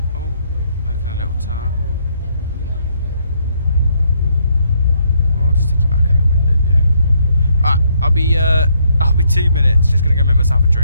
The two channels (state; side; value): inverted; both; correlation -0.71